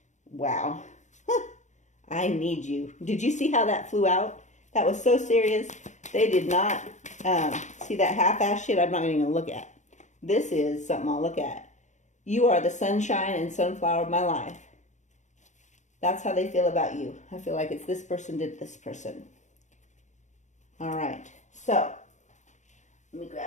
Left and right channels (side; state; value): right; late; 0.35 ms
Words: Wow. I need you. Did you see how that flew out? That was so serious. They did not see that half-ass shit I'm not even going to look at. This is something I'll look at. You are the sunshine and sunflower of my life. That's how they feel about you. I feel like it's this person did this person. All right. So, let me